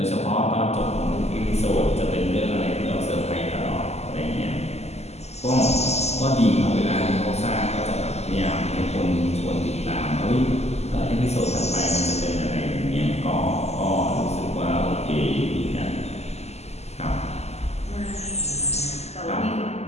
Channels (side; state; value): right; late; 0.31 ms